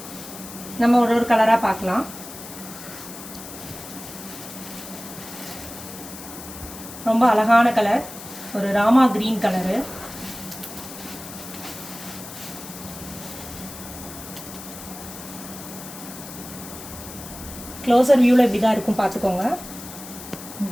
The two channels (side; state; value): left; noise; hiss, 13 dB below the sound